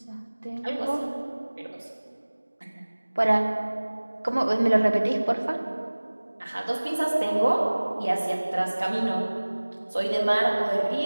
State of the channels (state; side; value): inverted; both; correlation -1.00